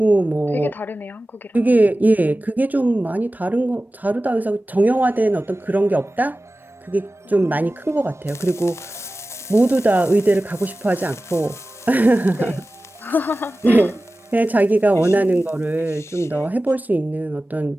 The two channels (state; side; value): normal; both; correlation 0.96